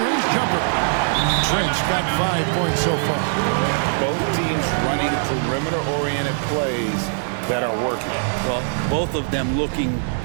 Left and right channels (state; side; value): silent; left; 60 dB below the other